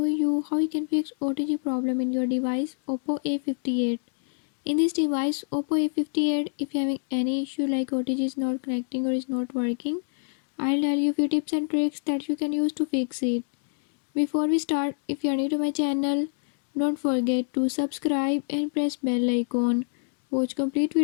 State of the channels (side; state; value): right; silent; digital silence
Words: you how you can fix OTG problem in your device Oppo A58. In this device Oppo A58, if you're having any issue like OTG is not connecting or is not working, I'll tell you a few tips and tricks that you can use to fix it. Before we start, if you are new to my channel, don't forget to subscribe and press bell icon. Watch complete